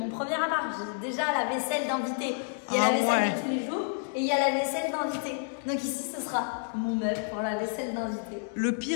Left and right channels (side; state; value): right; silent; digital silence